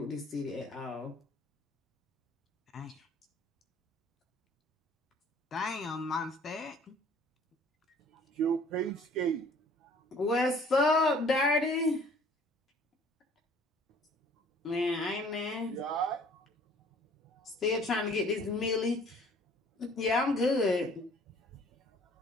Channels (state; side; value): normal; both; correlation 0.54